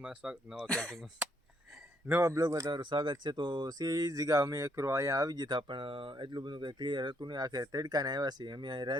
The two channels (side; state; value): both; normal; correlation 0.72